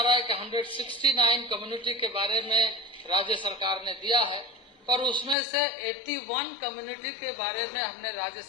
रहा है कि 169 कम्युनिटी के बारे में राज्य सरकार ने दिया है, पर उसमें से 81 कम्युनिटी के बारे में हमने राज्य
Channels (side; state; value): right; drops out; at 5.4 s